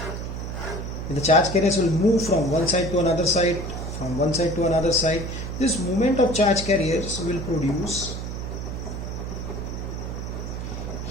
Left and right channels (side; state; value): right; noise; hum, 6 dB below the sound